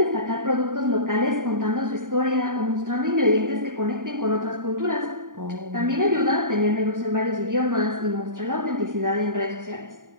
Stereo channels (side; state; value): left; late; 0.89 ms